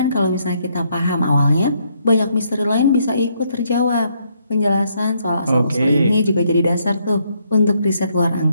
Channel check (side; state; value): both; inverted; correlation -0.73